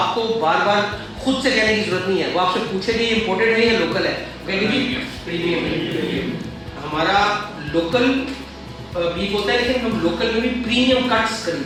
बार बार खुद से कहने की जरूरत नहीं है। वो आपसे पूछेगी इम्पोर्टेड है या लोकल है, कहेंगे जी प्रीमियम है। हमारा लोकल बीफ होता है, लेकिन हम लोकल में भी प्रीमियम कट्स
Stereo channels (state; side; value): identical; both; correlation 1.00